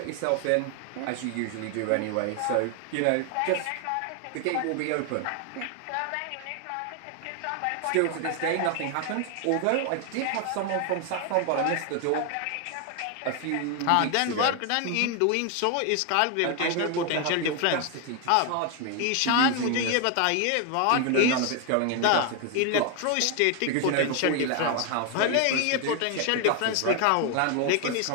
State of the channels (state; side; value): different; both; correlation 0.01